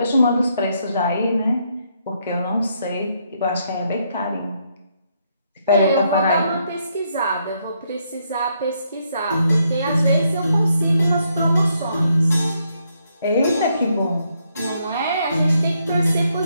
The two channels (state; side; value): inverted; both; correlation -0.75